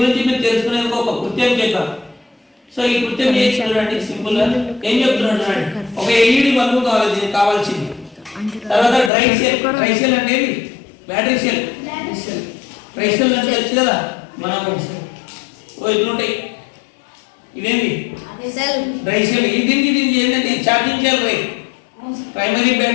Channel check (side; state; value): right; drops out; at 9.1 s